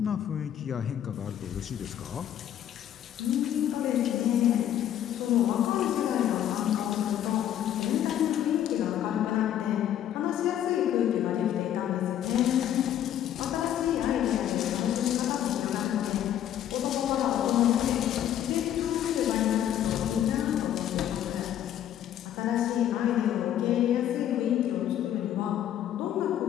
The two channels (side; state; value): right; quieter; 10.9 dB